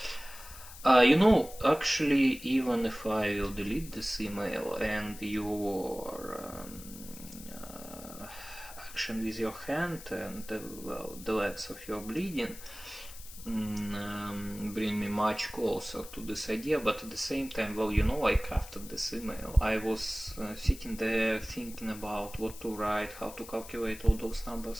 You know, actually, even if I will delete this email and your action with your hand and well, the legs of your bleeding bring me much closer to this idea, but at the same time, well, you know, I crafted this email. I was sitting there thinking about what to write, how to calculate all those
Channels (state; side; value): noise; left; hiss, 15 dB below the sound